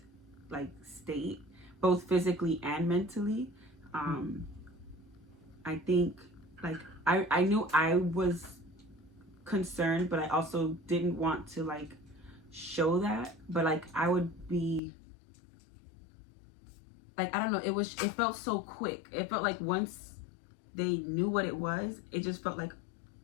like state, both physically and mentally. I think like I knew I was concerned, but I also didn't want to like show that. But like I would be like, I don't know, it felt so quick. It felt like once they knew what it was, it just felt like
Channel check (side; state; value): right; drops out; at 14.8 s